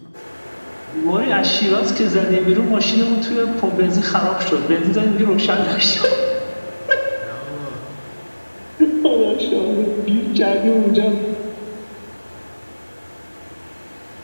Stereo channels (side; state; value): both; inverted; correlation -1.00